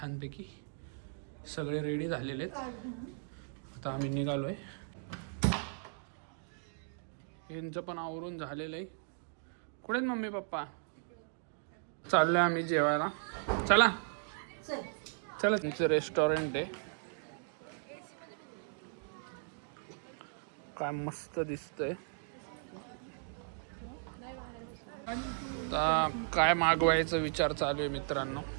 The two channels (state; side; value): silent; left; digital silence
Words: सगळे रेडी झालेले आहेत. आता आम्ही निघालोय. यांचं पण आवरून झालेलं आहे. कुठे आहेत मम्मी पप्पा? चाललोय आम्ही जेवायला. चला चला. तुमचं रेस्टॉरंट आहे. काय मस्त दिसतंय. आता काय मागवायचा विचार चालू आहे मित्रांनो